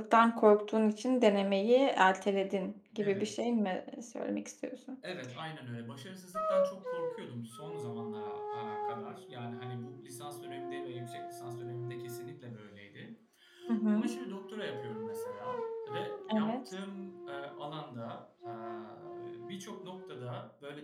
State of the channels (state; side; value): identical; both; correlation 1.00